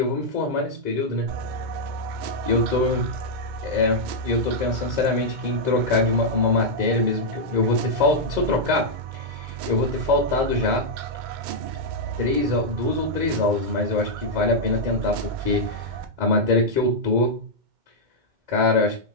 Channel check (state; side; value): late; left; 2.2 ms